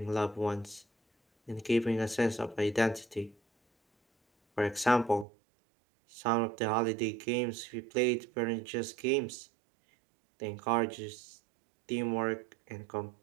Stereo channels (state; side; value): drops out; left; at 5.2 s